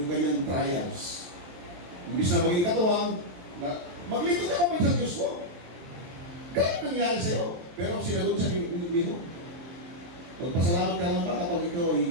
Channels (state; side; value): late; left; 23 ms